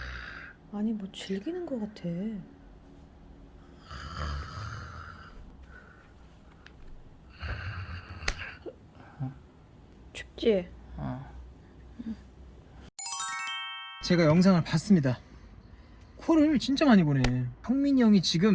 아니 뭐 즐기는 것 같아. 춥지? 제가 영상을 봤습니다. 코를 진짜 많이 고네. 형민이 형이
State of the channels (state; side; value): identical; both; correlation 1.00